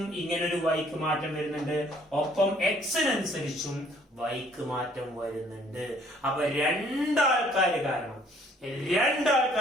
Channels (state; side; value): normal; both; correlation 0.60